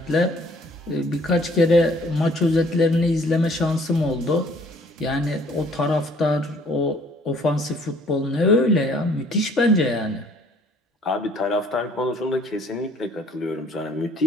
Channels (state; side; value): normal; both; correlation 0.58